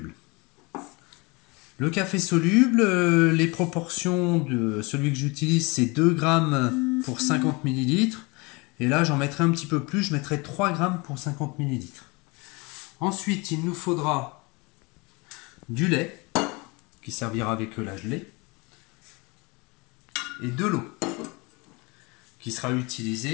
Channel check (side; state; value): right; quieter; 26.8 dB